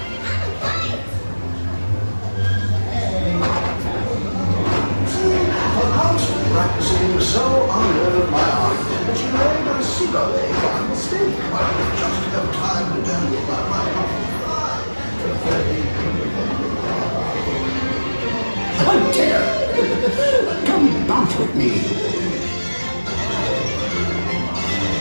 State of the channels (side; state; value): both; inverted; correlation -1.00